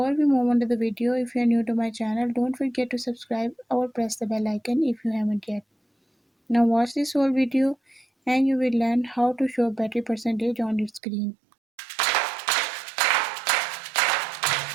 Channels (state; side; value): drops out; left; at 11.0 s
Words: we move on to the video, if you're new to my channel, don't forget to subscribe or press the bell icon if you haven't yet. Now watch this whole video and you will learn how to show battery percentage on your screen.